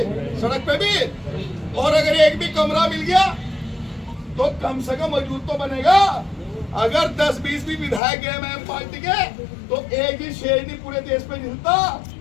सड़क पे भी। और अगर एक भी कमरा मिल गया तो कम से कम मौजूद तो बनेगा। अगर 10-20 भी विधायक है एमआईएम पार्टी के, तो एक ही शेर नहीं पूरे देश पे मिलता।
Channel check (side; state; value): right; drops out; at 8.0 s